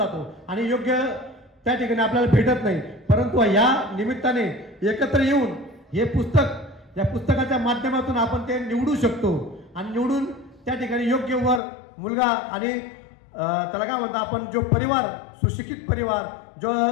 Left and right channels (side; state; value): right; drops out; at 11.6 s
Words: आणि योग्य त्या ठिकाणी आपल्याला भेटत नाही. परंतु या निमित्ताने एकत्र येऊन हे पुस्तक, या पुस्तकाच्या माध्यमातून आपण ते निवडू शकतो आणि निवडून त्या ठिकाणी योग्य वर मुलगा आणि त्याला काय म्हणतो आपण, जो परिवार, सुशिक्षित परिवार, जो